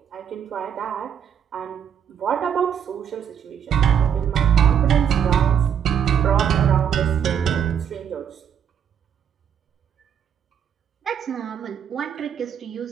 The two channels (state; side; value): quieter; left; 8.3 dB